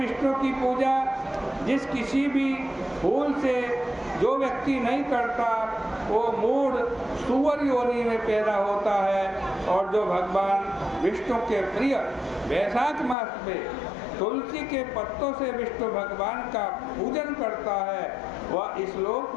की पूजा जिस किसी भी फूल से जो व्यक्ति नहीं करता, वो मूढ़ सुअर योनि में पैदा होता है। और जो भगवान विष्णु के प्रिय वैशाख मास में तुलसी के पत्तों से विष्णु भगवान का पूजन करता है, वह इस लोक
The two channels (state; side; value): drops out; right; at 13.2 s